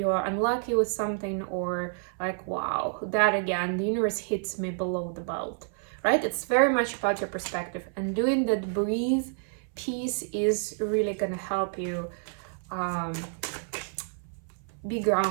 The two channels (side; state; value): left; silent; 59 dB below the other